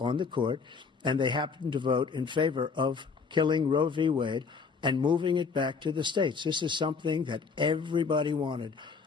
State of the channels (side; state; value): right; quieter; 5.2 dB